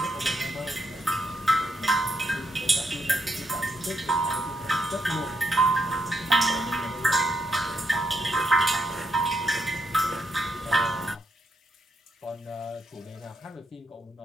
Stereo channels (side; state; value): both; normal; correlation 0.80